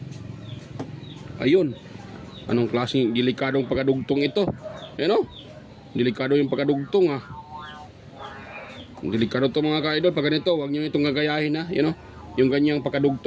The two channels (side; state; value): both; identical; correlation 1.00